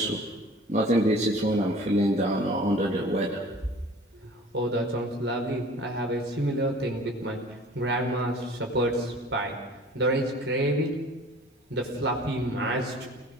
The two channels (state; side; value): normal; both; correlation 0.46